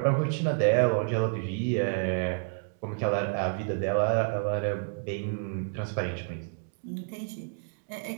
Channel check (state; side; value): silent; left; digital silence